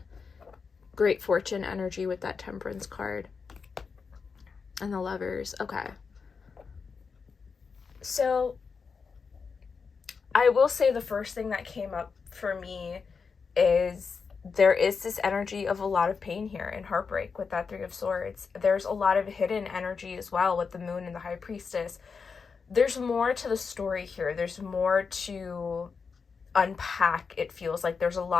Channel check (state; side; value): quieter; right; 5.3 dB